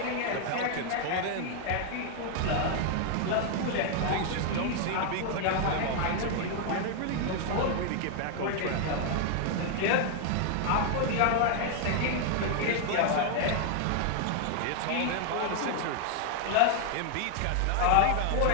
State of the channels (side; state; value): both; different; correlation 0.00